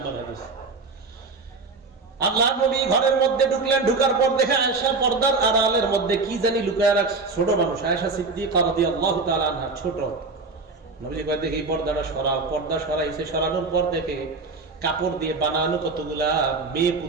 হাদিস। আল্লাহ নবী ঘরের মধ্যে ঢুকলেন, ঢুকার পর দেখে আয়েশা পর্দার আড়ালের মধ্যে কি জানি লুকায় রাখছে। ছোট মানুষ আয়েশা সিদ্দিকা রাদিয়াল্লাহু তাআলা আনহা, ছোট। নবীজি কয়, দেখি পর্দাটা সরাও। পর্দা সরাইছে, সরানোর পর দেখে কাপড় দিয়ে বানানো কতগুলা মেয়ে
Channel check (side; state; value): left; quieter; 3.9 dB